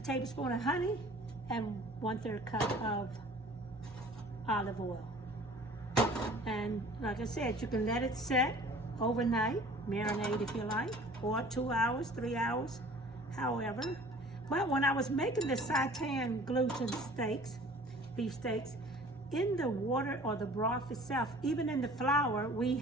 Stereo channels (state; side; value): normal; both; correlation 0.48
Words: of honey and 1/3 cup of olive oil. And like I said, you can let it set overnight, marinate if you like, or 2 hours, 3 hours, however. But when I was making the Seitan gluten steaks, beef steaks, in the water or the broth itself, even in the flour, we